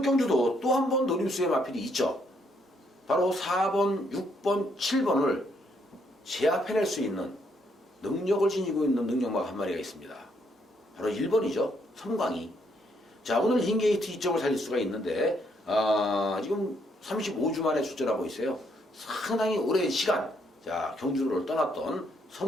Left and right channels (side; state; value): both; normal; correlation 0.73